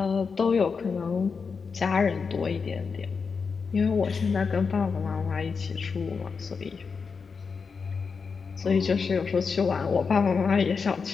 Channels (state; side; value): quieter; right; 5.3 dB